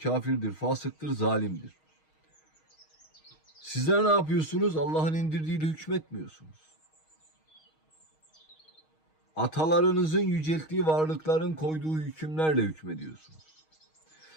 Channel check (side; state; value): right; late; 6.4 ms